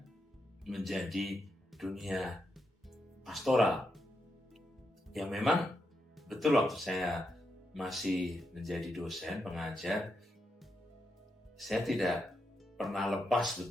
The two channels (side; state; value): both; normal; correlation 0.83